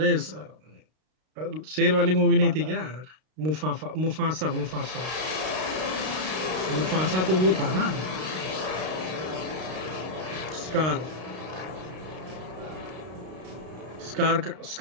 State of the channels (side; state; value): left; late; 32 ms